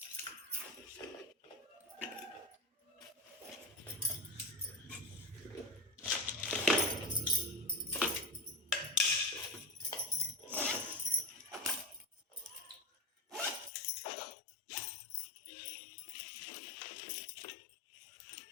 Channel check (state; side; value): drops out; right; at 13.7 s